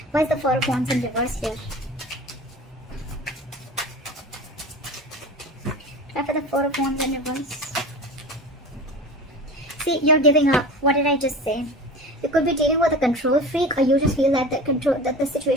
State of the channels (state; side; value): normal; both; correlation 0.34